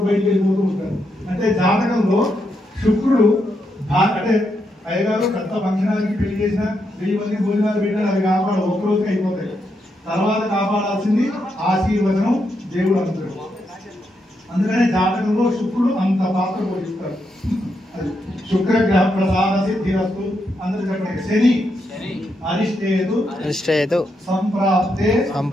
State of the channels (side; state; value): both; normal; correlation 0.81